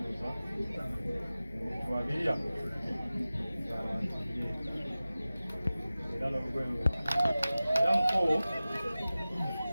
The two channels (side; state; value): both; inverted; correlation -0.96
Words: twabirya abantu era n'olugoye era muko